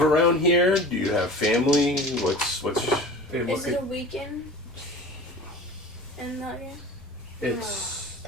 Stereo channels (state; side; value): normal; both; correlation 0.38